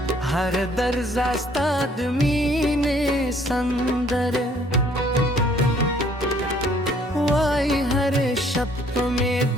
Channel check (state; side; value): normal; both; correlation 0.61